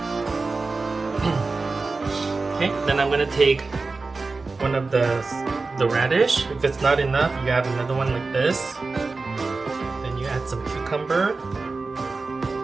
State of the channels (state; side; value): quieter; left; 3.9 dB